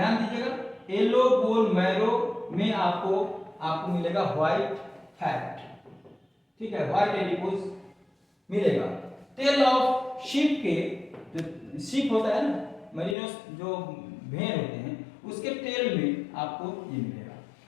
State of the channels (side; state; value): right; drops out; at 13.2 s